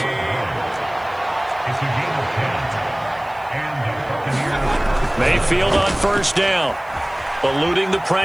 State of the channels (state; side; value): noise; left; hiss, 28 dB below the sound